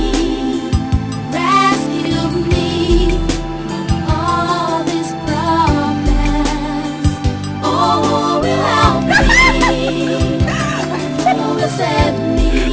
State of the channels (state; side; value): identical; both; correlation 1.00